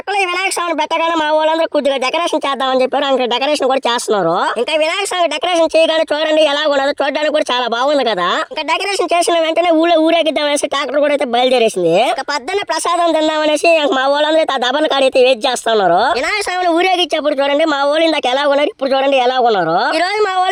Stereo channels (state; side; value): identical; both; correlation 1.00